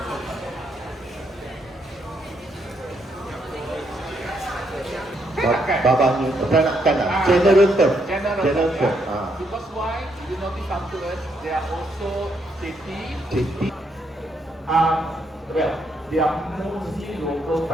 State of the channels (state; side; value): normal; both; correlation 0.75